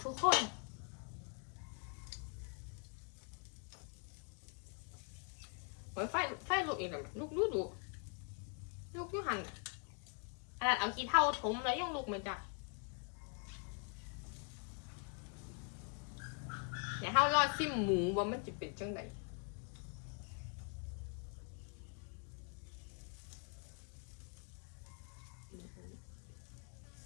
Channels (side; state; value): right; quieter; 39.7 dB